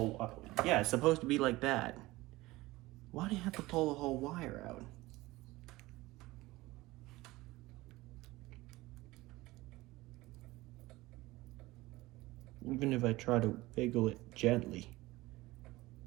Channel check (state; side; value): quieter; left; 19.5 dB